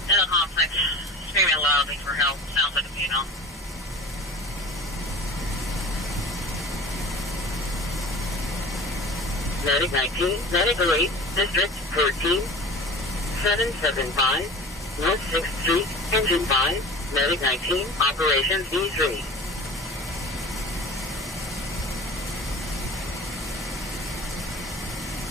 in the complex, screaming loudly for help. Sounds like a funeral. Medic 19, Medic 8, District 14, 775, North 6th Street, Engine 5, Medic 19, Operations D3.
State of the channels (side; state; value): both; normal; correlation 0.39